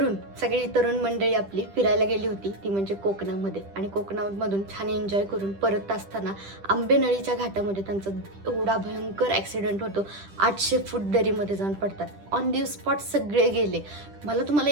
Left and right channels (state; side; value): late; left; 10 ms